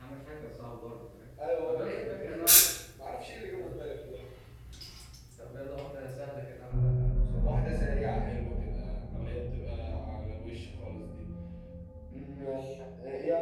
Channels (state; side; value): identical; both; correlation 1.00